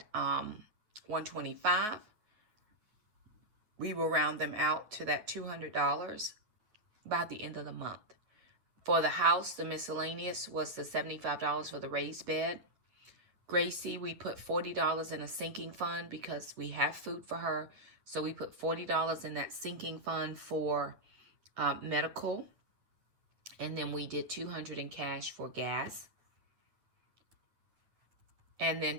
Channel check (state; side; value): late; left; 9.4 ms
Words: $125. We will round them out to that $200 by the end of the month. For the house, the miscellaneous was the $75 for the raised bed. Gracie, we put $40 in a sinking fund because we have food for her. So we put $40 in that sinking fund for medical. And then we did $200 in cash for gas. And then